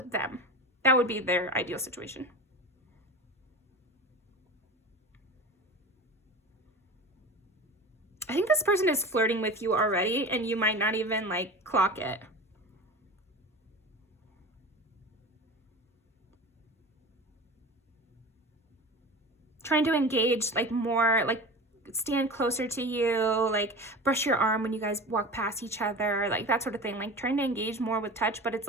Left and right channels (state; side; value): normal; both; correlation 0.32